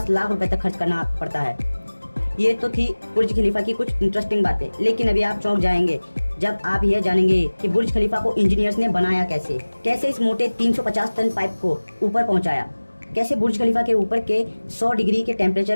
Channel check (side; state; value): both; inverted; correlation -1.00